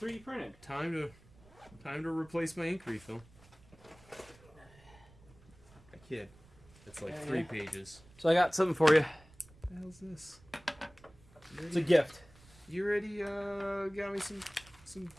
printed. time to replace my ink refill. I kid. It's like 3 pages. So I got something for you. What the hell's this? It's a gift. You already got me some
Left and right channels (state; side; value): noise; right; rumble, 25 dB below the sound